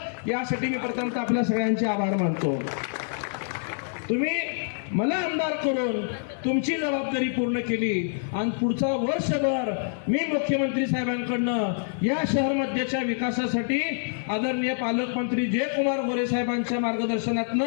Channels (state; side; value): silent; right; digital silence